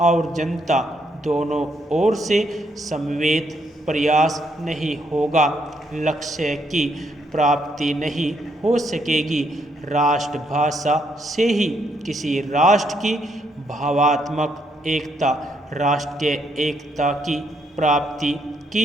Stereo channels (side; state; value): both; normal; correlation 0.74